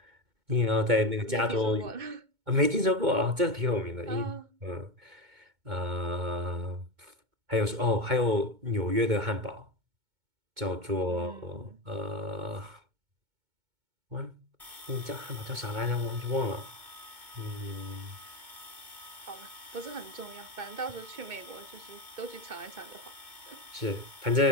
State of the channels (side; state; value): left; late; 2.2 ms